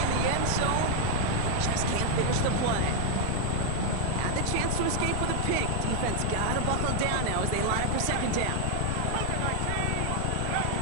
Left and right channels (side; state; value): both; different; correlation 0.00